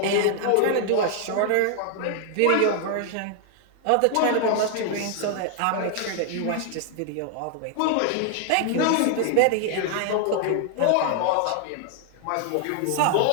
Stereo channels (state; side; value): different; both; correlation 0.00